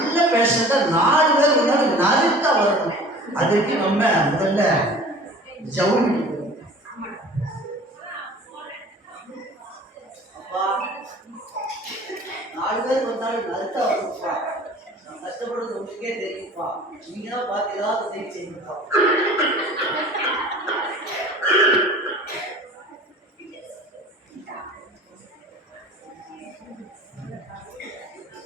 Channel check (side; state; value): both; normal; correlation 0.45